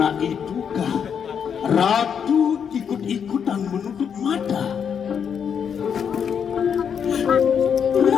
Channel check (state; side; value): quieter; right; 7.5 dB